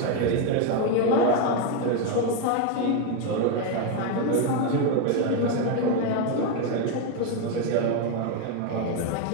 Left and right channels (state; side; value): different; both; correlation 0.02